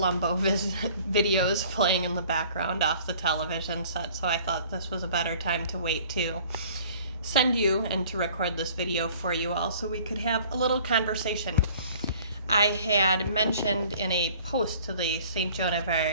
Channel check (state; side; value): inverted; both; correlation -0.52